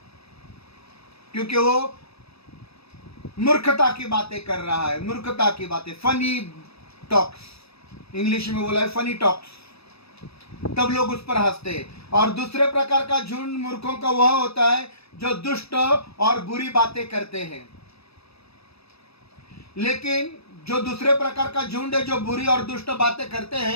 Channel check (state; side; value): late; right; 0.78 ms